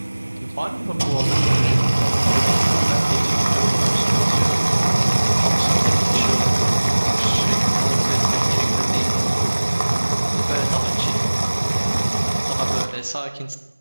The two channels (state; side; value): inverted; both; correlation -1.00